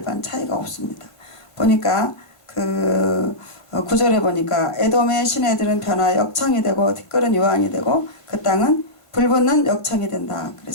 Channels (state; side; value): late; right; 1.5 ms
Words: 차이가 없습니다. 보니까 그 9절에 보니까 에돔의 시내들은 변화 역청이 되고 티끌은 유황이 되고 그 땅은 불붙는 역청이 된다